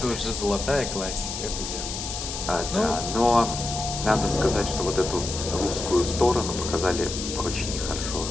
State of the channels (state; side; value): noise; left; hiss, 6 dB below the sound